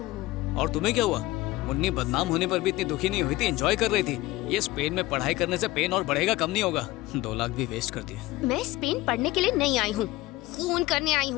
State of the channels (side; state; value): right; quieter; 18.6 dB